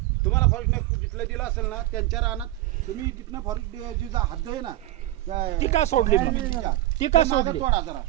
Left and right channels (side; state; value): left; quieter; 15.9 dB